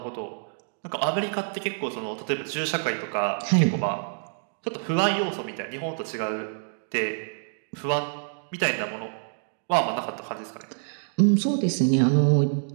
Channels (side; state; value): left; silent; digital silence